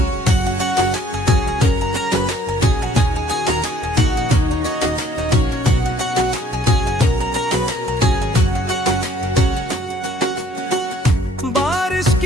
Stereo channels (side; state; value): both; normal; correlation 0.59